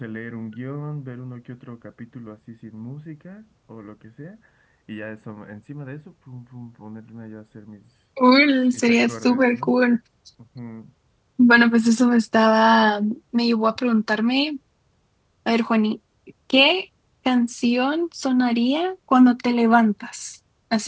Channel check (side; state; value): both; identical; correlation 1.00